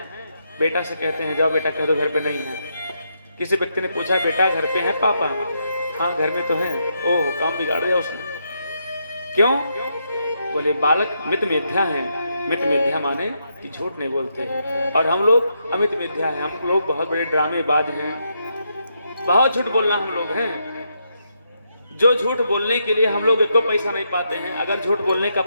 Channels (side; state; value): both; inverted; correlation -0.80